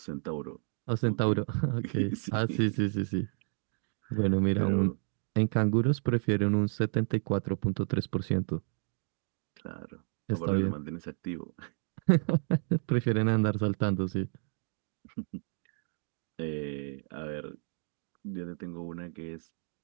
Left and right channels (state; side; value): silent; left; 57 dB below the other